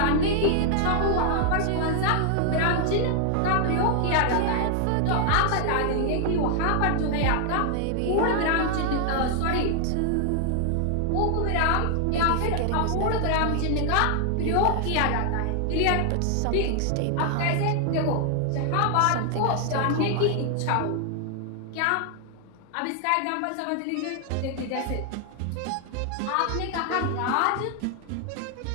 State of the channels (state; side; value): different; both; correlation 0.00